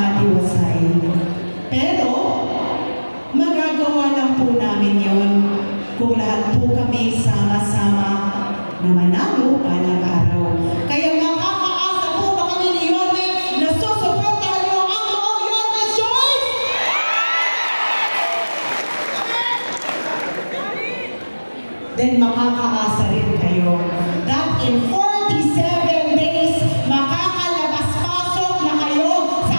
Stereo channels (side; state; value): both; inverted; correlation -1.00